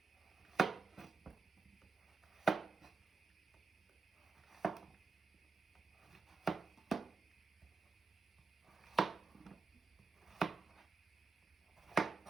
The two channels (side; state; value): left; quieter; 4.1 dB